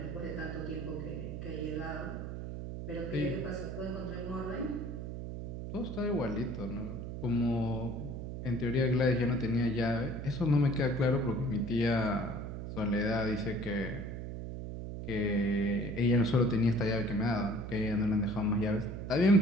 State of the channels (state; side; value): noise; right; hum, 7 dB below the sound